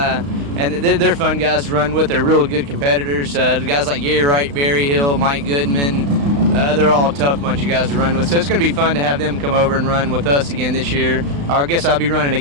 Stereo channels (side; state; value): left; late; 35 ms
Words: they're fun guys to run with. They're real good competitors. The guys like Gary Wright, Berry Hill, Mike Goodman, they're all a tough bunch of guys to run with. So it's going to be fun to have them come over and run with us again this year. Or I guess I'll be running